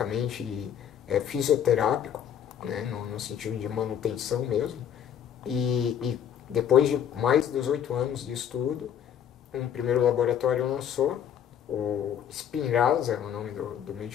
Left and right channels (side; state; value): right; quieter; 9.2 dB